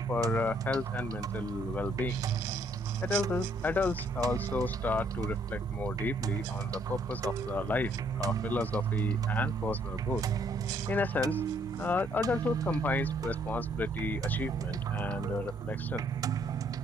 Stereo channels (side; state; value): both; normal; correlation 0.67